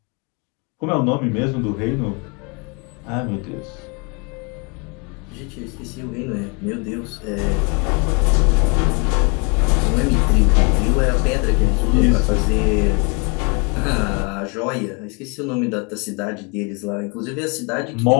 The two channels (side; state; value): right; quieter; 33.3 dB